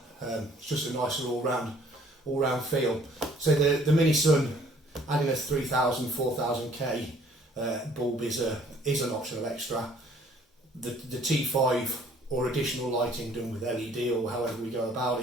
It's just a nicer all-round feel. So the MiniSun, adding a 3000, 4000K bulb is an optional extra. The T5 or additional lighting done with LED or however we go about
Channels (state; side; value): normal; both; correlation 0.58